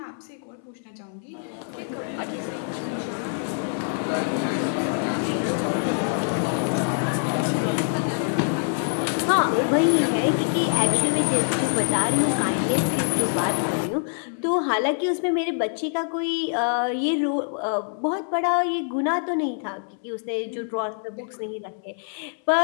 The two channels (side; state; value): right; silent; digital silence